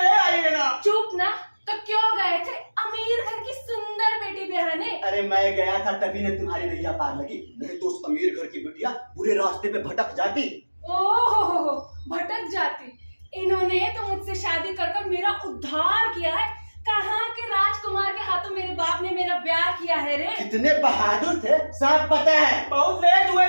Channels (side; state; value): both; inverted; correlation -1.00